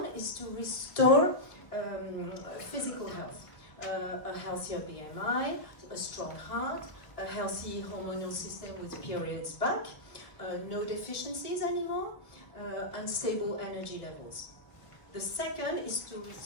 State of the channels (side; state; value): right; late; 1.1 ms